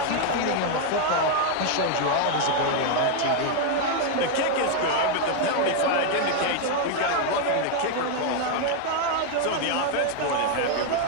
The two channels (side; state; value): both; different; correlation 0.00